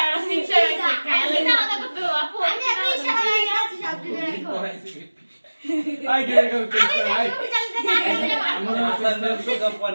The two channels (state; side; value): inverted; both; correlation -1.00